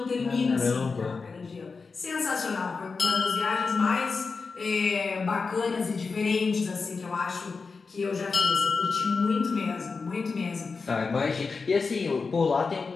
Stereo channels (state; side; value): quieter; right; 4.6 dB